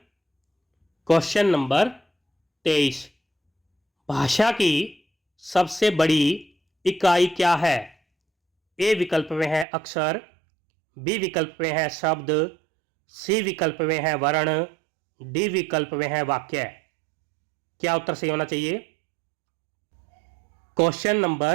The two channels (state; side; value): drops out; left; at 9.7 s